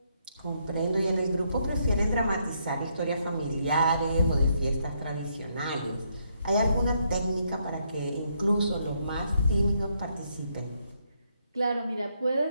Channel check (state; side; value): inverted; both; correlation -0.75